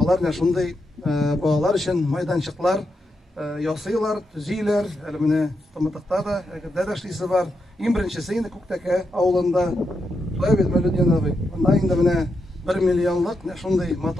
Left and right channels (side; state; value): both; normal; correlation 0.84